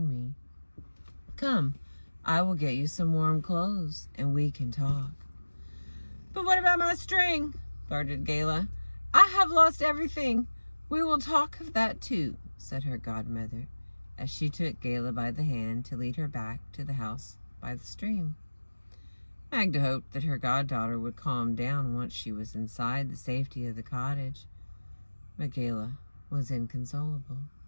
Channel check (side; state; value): both; inverted; correlation -1.00